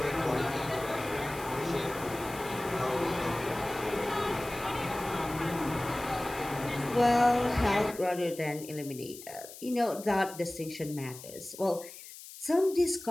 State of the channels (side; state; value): left; noise; hiss, 15 dB below the sound